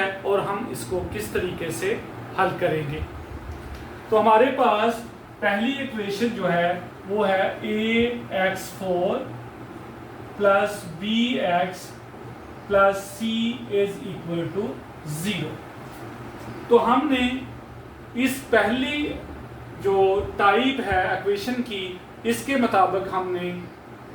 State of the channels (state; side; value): identical; both; correlation 1.00